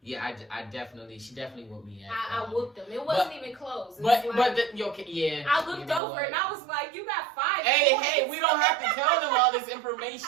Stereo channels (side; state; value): left; drops out; at 6.0 s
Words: yeah, she definitely whooped me. I whooped him. It wasn't even close. Yeah. I looked over and I was like, "You got 5 points." Hey, we don't have to tell them all this